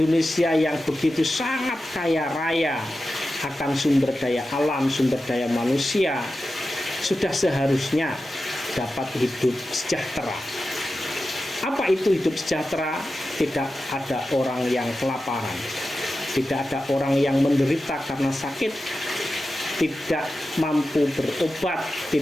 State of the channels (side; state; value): both; normal; correlation 0.92